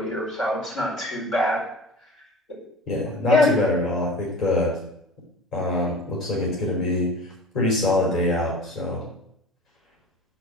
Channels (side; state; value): both; normal; correlation 0.37